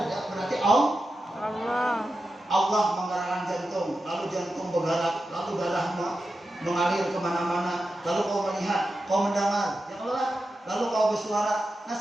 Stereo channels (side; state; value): both; normal; correlation 0.90